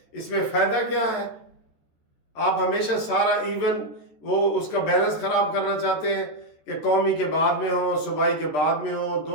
اس میں فائدہ کیا ہے؟ آپ ہمیشہ سارا ایون وہ اس کا بیلنس خراب کرنا چاہتے ہیں کہ قومی کے بعد میں ہو، صوبائی کے بعد میں ہو،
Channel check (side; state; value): right; late; 13 ms